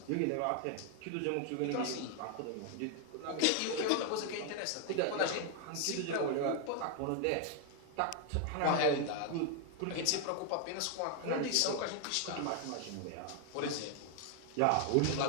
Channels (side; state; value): both; different; correlation 0.00